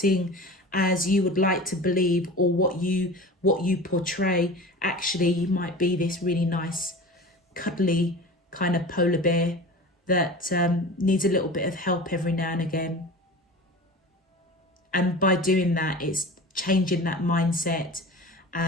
as you would like to believe, or what you portray. Actually, you might be this really nice, cuddly kind of polar bear that needs a little bit of help every now and again. And by doing that, it's changing that mindset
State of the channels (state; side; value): normal; both; correlation 0.35